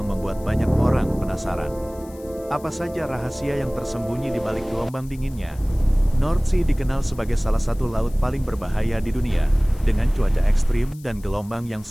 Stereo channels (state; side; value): noise; left; hiss, 24 dB below the sound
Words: membuat banyak orang penasaran. Apa saja rahasia yang tersembunyi di balik gelombang dinginnya? North Sea dikenal sebagai salah satu laut paling berbahaya di dunia, dengan cuaca ekstrim dan gelombang yang